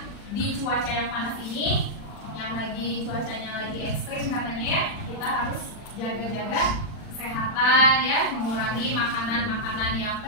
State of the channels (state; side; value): late; right; 40 ms